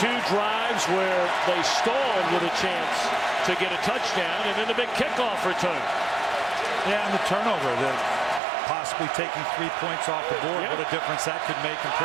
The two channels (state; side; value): drops out; left; at 8.4 s